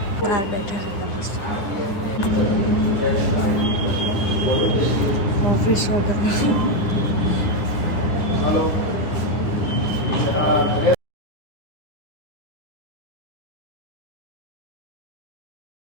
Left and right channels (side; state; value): right; late; 9.8 ms